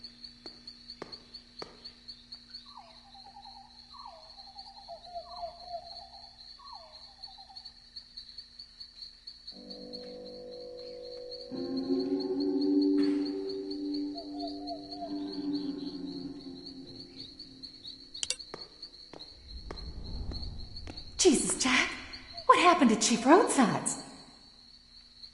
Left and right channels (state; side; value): identical; both; correlation 1.00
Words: Jesus, Jack. What happened to Chief Roadsides?